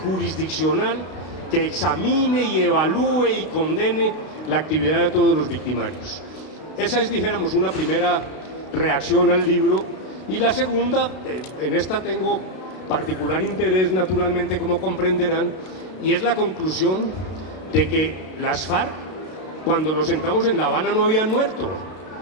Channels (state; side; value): late; right; 32 ms